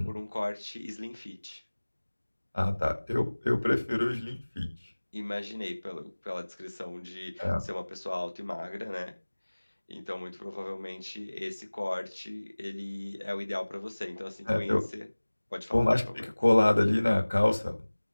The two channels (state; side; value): inverted; both; correlation -1.00